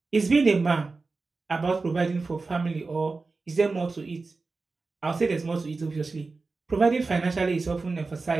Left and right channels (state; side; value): quieter; left; 3.9 dB